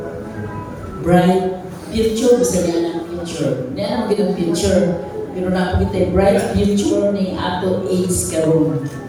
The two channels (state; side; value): identical; both; correlation 1.00